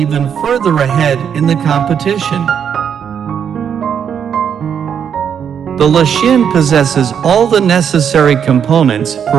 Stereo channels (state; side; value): quieter; left; 8.0 dB